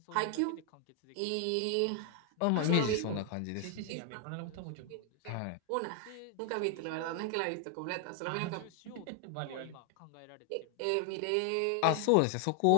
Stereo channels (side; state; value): both; different; correlation 0.00